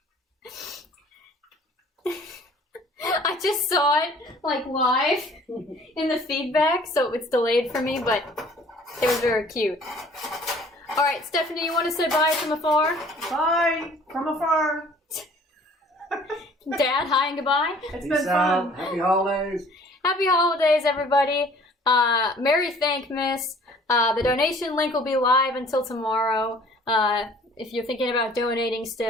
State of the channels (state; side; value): normal; both; correlation 0.53